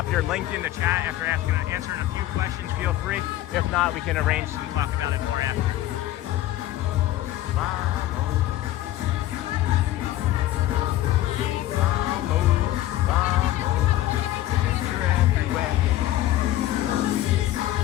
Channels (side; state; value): right; quieter; 14.4 dB